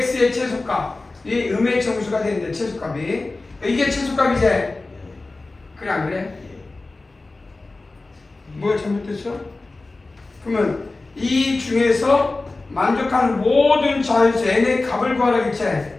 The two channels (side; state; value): right; quieter; 3.3 dB